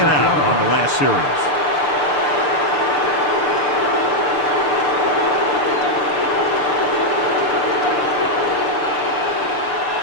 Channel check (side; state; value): right; late; 6.8 ms